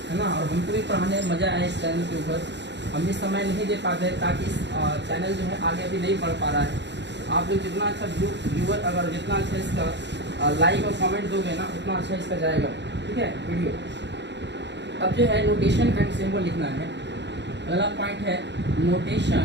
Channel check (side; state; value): left; late; 0.51 ms